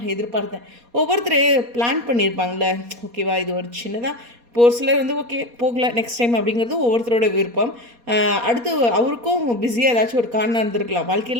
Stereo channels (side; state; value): left; late; 4.2 ms